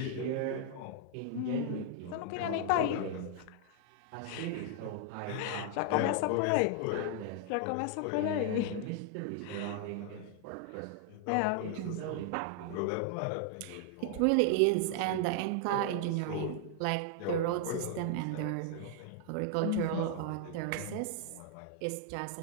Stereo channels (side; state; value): both; different; correlation 0.00